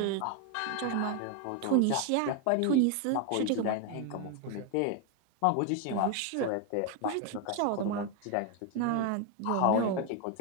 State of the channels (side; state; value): both; different; correlation 0.01